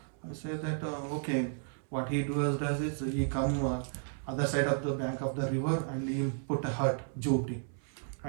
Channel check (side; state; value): left; silent; 56 dB below the other